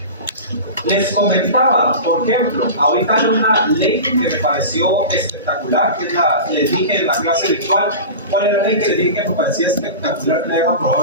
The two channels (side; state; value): both; inverted; correlation -0.31